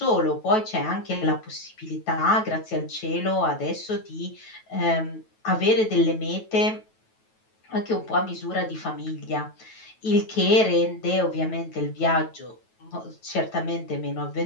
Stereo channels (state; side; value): late; right; 9.2 ms